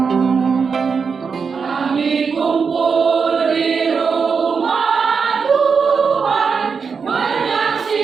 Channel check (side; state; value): left; quieter; 5.6 dB